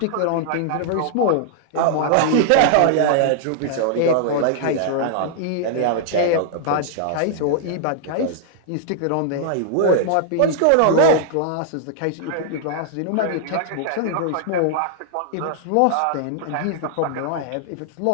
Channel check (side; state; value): both; different; correlation -0.01